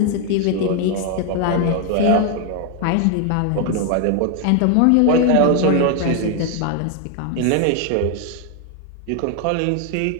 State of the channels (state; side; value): different; both; correlation 0.01